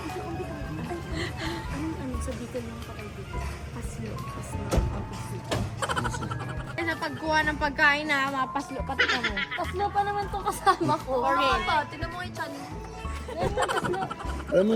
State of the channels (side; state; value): both; identical; correlation 1.00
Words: Ano sa dito lang kapag dito? Pasyo. Pasyo. Ano sa pagkuha ng pagkain na mapaslo pati ka mo. Paslo pa naman tong kasama ko. Tignan mo yung chan. Yan yung paslo. Alam mo